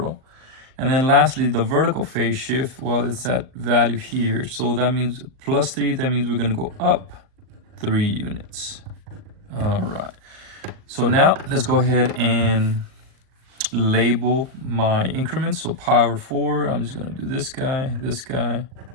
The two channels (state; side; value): late; left; 39 ms